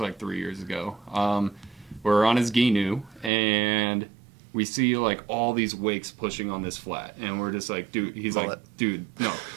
3 years ago. We're on his Ginu, and we see like all these wakes pushing on this flat, and we're just like, dude. He's like, dude, no.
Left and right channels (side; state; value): left; drops out; at 3.3 s